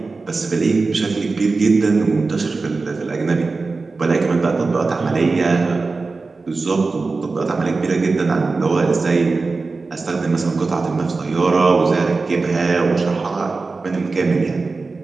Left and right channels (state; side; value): quieter; left; 3.9 dB